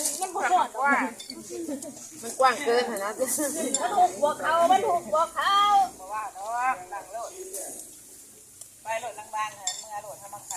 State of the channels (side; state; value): both; identical; correlation 1.00